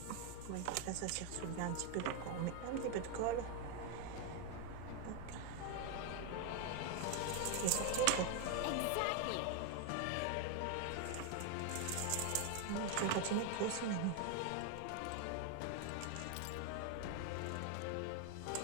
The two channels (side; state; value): both; different; correlation 0.00